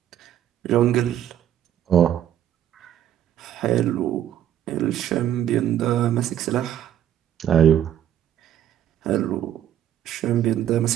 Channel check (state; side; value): quieter; left; 11.0 dB